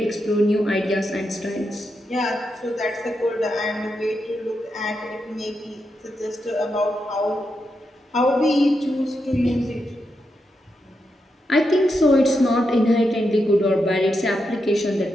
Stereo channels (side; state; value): both; normal; correlation 0.85